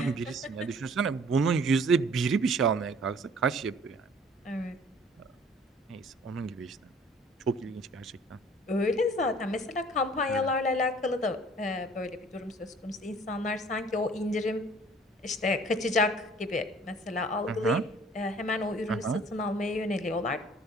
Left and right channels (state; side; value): normal; both; correlation 0.53